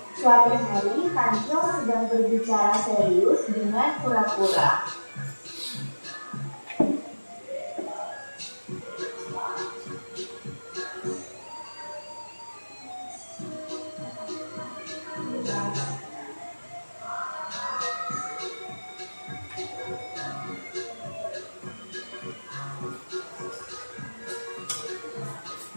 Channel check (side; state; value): both; inverted; correlation -1.00